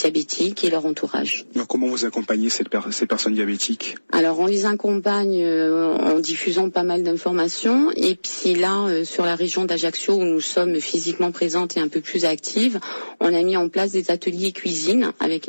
et leur entourage. Alors, comment vous accompagnez ces personnes diabétiques? Alors, on les accompagne en diffusant pas mal d'informations. Et puis là, sur la région d'Ajaccio, où nous sommes physiquement présentes et un peu plus actives, on a mis en place des ateliers cuisine avec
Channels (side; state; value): both; inverted; correlation -1.00